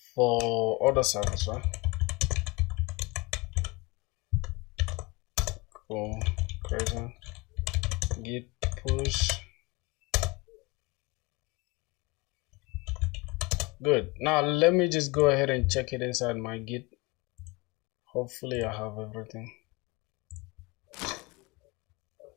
For order service, right? Cool. Crazy. Git push. Good. Now let me just go ahead and check it inside my Git. Hopefully I have everything.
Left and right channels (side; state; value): right; quieter; 24.9 dB